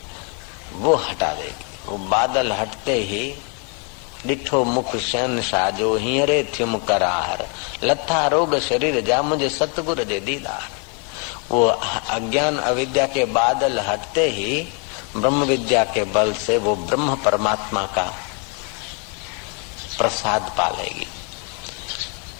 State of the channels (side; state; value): right; quieter; 37.3 dB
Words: वो हटा देगी। वो बादल हटते ही डिठो मुख शैन साजो हियरे थ्युम करार, लथा रोग शरीर जा मुझे सतगुर दे दीदार। वो अज्ञान अविद्या के बादल हटते ही ब्रह्म विद्या के बल से वो ब्रह्म परमात्मा का प्रसाद पालेगी।